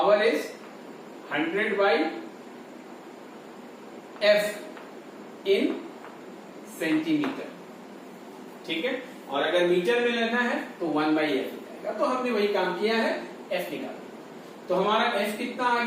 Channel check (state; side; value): identical; both; correlation 1.00